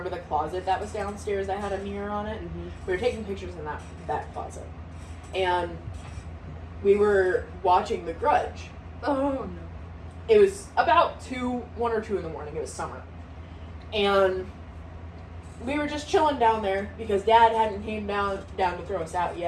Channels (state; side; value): identical; both; correlation 1.00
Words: the closet that was downstairs that had a mirror on it? Mm-hmm. We were taking pictures in that closet. And we were watching The Grudge. Oh, no. It was about 1 or 2 in the morning. It was summer. And we were just chilling down there because Dad hadn't came down to throw us out